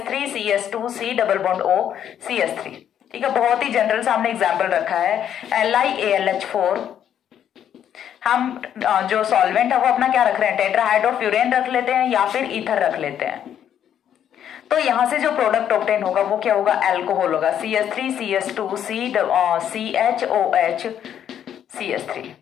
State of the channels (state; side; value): quieter; right; 9.7 dB